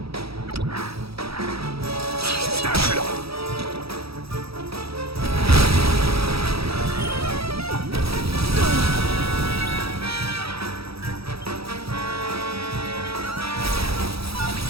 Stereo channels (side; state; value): left; late; 0.77 ms